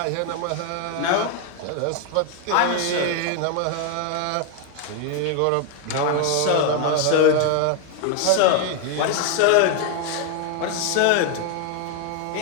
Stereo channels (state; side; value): different; both; correlation 0.01